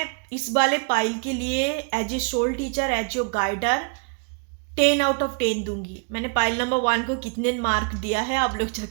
इस वाले पाइल के लिए as a soul teacher, as your guider 10 out of 10 दूंगी। मैंने पाइल नंबर 1 को कितने मार्क दिया है आप लोग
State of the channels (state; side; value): quieter; left; 37.2 dB